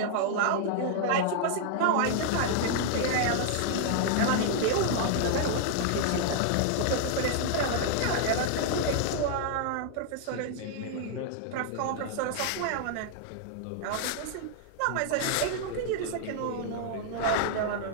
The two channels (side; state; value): both; different; correlation -0.01